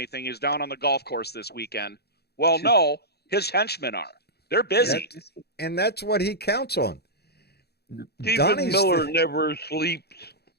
He's down on the golf course this weekend. Well, no, his henchmen are. They're busy, and that's what he counts on. Stephen Miller never sleeps.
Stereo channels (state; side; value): late; right; 0.47 ms